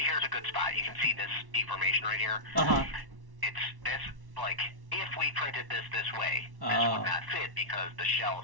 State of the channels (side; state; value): left; late; 1.1 ms